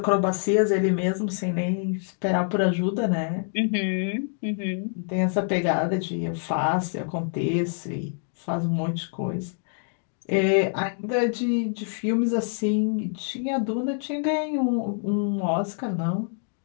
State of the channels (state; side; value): silent; right; 61 dB below the other